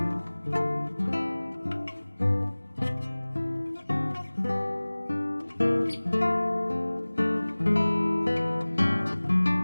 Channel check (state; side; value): inverted; both; correlation -1.00